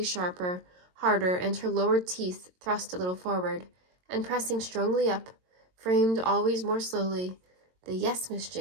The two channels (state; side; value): late; left; 22 ms